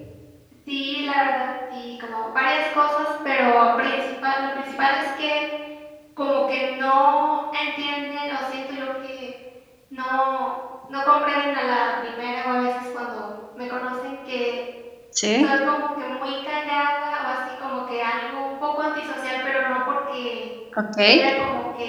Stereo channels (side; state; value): both; identical; correlation 1.00